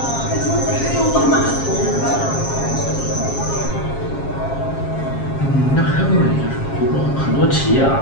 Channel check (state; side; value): late; right; 7.4 ms